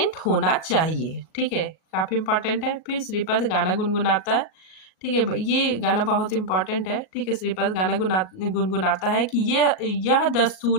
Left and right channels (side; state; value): right; late; 37 ms